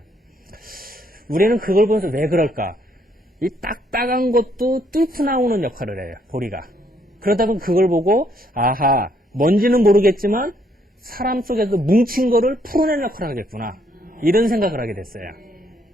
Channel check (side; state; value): both; normal; correlation 0.70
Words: 우리는 그걸 보면서 왜 그럴까? 이 딱딱한 것도 뚫고 나오는 역할을 해요, 보리가. 그러다 보면 그걸 보고, 아하, 뭔지는 모르겠지만, 사람 속에서 뭉친 거를 풀어내는 역할을 하겠구나. 이런 생각을 하게 됐어요.